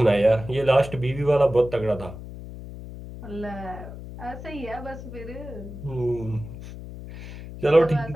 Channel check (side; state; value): left; noise; hum, 12 dB below the sound